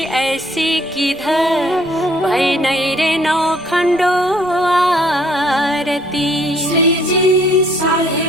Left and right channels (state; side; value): noise; right; rumble, 27 dB below the sound